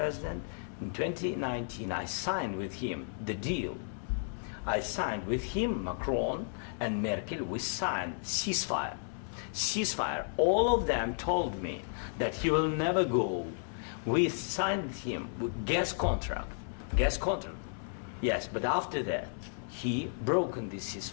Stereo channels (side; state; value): right; silent; 56 dB below the other